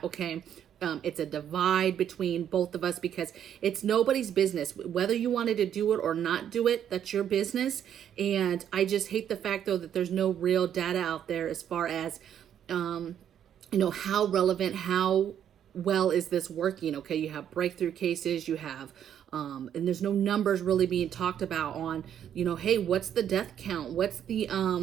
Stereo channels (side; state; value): left; quieter; 9.6 dB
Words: okay? It's a divide between both of us because it's nobody's business. Whether you wanted to do it or not do it, that's your business. And I just hate the fact, though, that there's no real data out there as far as, how relevant, how well is this working, okay? You have breakthrough cases, you have, and there's no numbers really being talked about on, hey, what's the death count? What's the